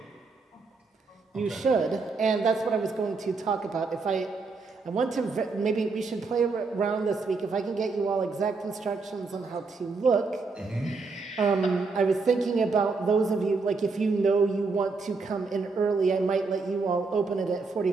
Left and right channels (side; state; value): left; quieter; 4.2 dB